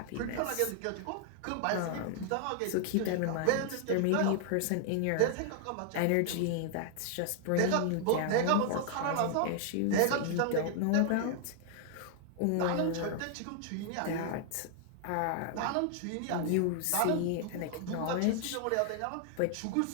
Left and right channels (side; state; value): both; different; correlation 0.00